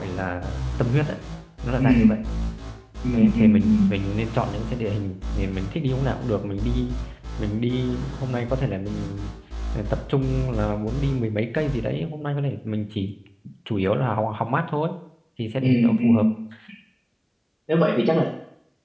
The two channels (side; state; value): both; identical; correlation 1.00